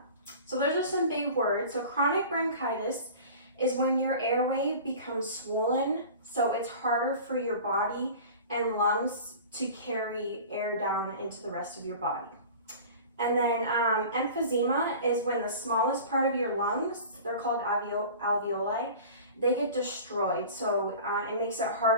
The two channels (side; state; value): both; inverted; correlation -0.39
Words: So those are some big words. So chronic bronchitis is when your airway becomes swollen, so it's harder for your body and lungs to carry air down into the rest of your body. And then emphysema is when the smallest part of your lungs, they're called alveoli, they get destroyed. So it makes it